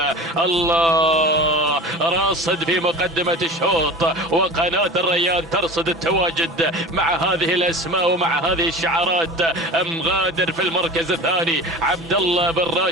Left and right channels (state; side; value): normal; both; correlation 0.35